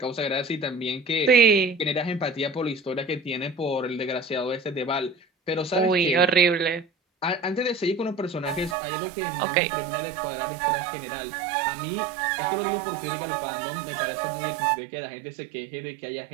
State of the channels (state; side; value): drops out; left; at 8.8 s